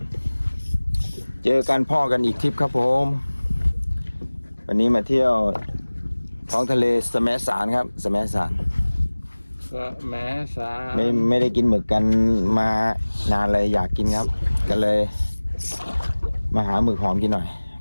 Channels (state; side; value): inverted; both; correlation -1.00